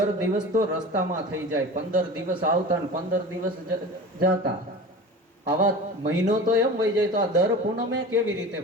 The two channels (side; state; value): both; normal; correlation 0.34